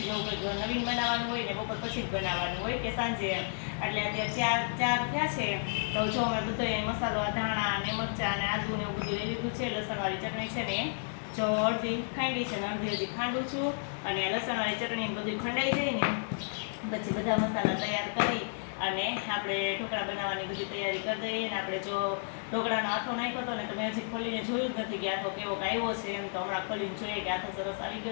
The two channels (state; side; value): silent; right; 56 dB below the other